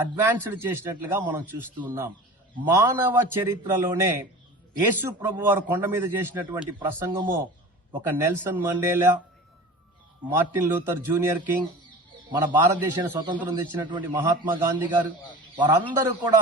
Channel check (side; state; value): both; normal; correlation 0.37